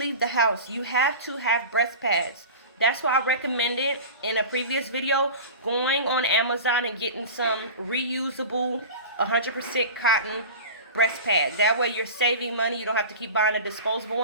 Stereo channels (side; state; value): both; inverted; correlation -0.33